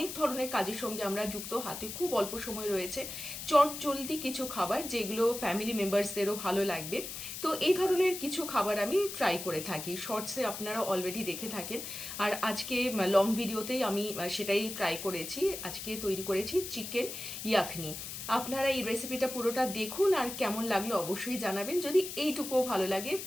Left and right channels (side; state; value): left; noise; hiss, 8 dB below the sound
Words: ধরনের কাজের সঙ্গে আমরা যুক্ত, হাতে খুব অল্প সময় রয়েছে, চট জলদি কিছু খাবার যেগুলো ফ্যামিলি মেম্বার্সদেরও ভালো লাগবে। তো এই ধরনের কিছু খাবার আমি ট্রাই করে থাকি, শর্টসে আপনারা অলরেডি দেখে থাকেন। আর আজকে লং ভিডিওতেই আমি সেটাই ট্রাই করেছি। আজকে তৈরি করেছি চিকেন ইয়াখনি। আপনারা এই রেসিপিটা পুরোটা দেখুন, আর কেমন লাগলো অবশ্যই জানাবেন। যদি এইটুকুও ভালো লাগে